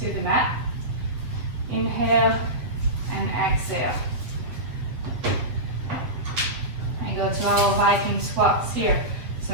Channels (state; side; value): late; left; 8.0 ms